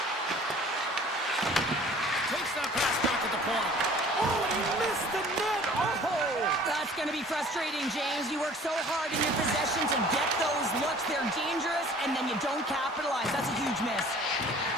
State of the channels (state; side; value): normal; both; correlation 0.49